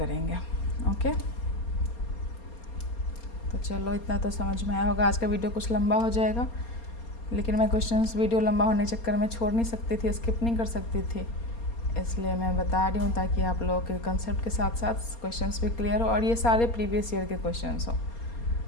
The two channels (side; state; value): right; late; 4.3 ms